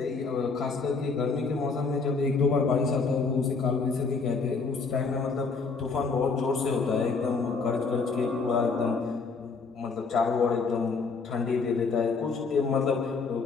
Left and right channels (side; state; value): right; quieter; 4.6 dB